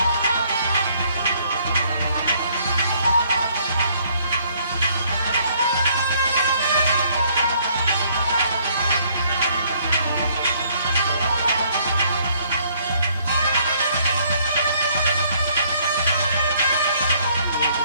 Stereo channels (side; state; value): both; inverted; correlation -0.64